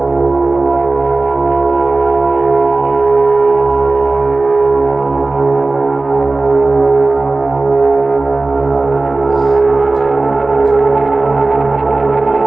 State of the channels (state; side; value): quieter; left; 3.2 dB